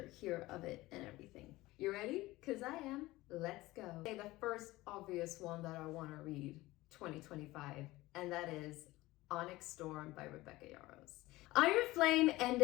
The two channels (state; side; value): quieter; right; 18.8 dB